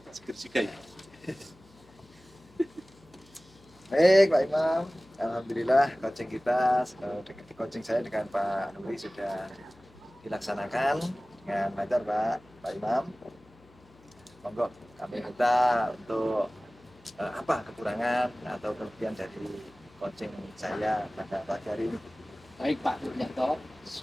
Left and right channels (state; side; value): noise; left; hum, 27 dB below the sound